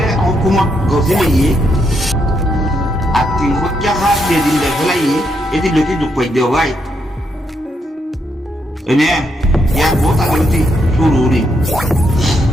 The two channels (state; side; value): normal; both; correlation 0.78